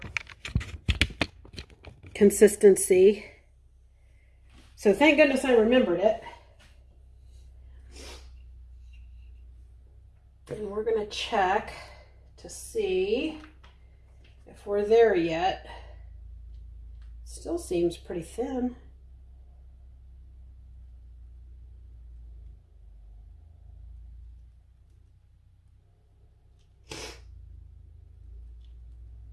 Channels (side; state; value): both; identical; correlation 1.00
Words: consistency. So thank goodness I remembered it. And we're going to check to see if we're there yet. Still seems pretty thin.